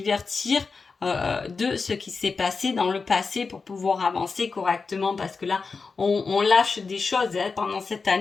de ce qui s'est passé dans le passé pour pouvoir avancer correctement, parce que là, on lâche des choses, hein, pendant cette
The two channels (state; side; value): quieter; right; 4.6 dB